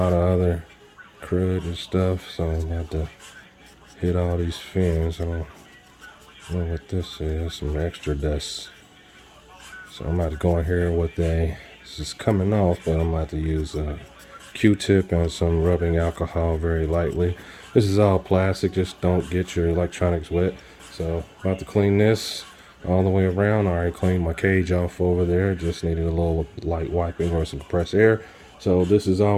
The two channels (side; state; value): both; identical; correlation 1.00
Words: of other crud and stuff, so I'm gonna have to hit all these fins. I don't know what this is, some extra dust. So I'm about to go in here with this is coming off, but I'm about to use a Q-tip and some rubbing alcohol very lightly. This is all plastic, just don't get your electronics wet. So about to clean this all the way around. I already cleaned my cage off over there, just needed a little light wiping or some compressed air. So this is